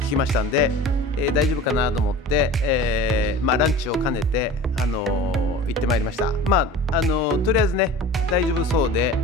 きましたんで、大丈夫かなと思って、ランチを兼ねて、行ってまいりました。とりあえずね大丈夫そうで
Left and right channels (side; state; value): both; normal; correlation 0.38